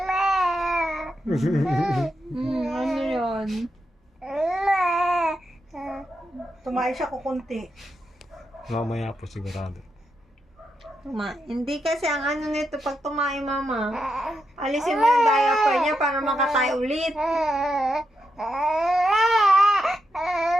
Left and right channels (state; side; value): normal; both; correlation 0.85